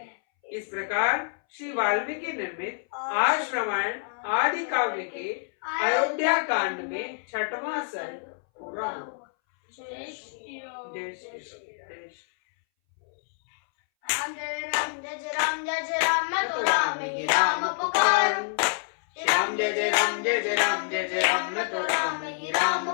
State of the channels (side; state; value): right; silent; 60 dB below the other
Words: इस प्रकार श्री वाल्मीकि निर्मित आर्ष रामायण आदि काव्य के अयोध्या कांड में छठवां सर्ग पूरा हुआ। जय श्री राम। राम जय राम जय जय राम जय जय राम, मैं तो राम ही राम पुकारूं। श्री राम जय जय राम जय जय राम जय जय राम, मैं तो राम ही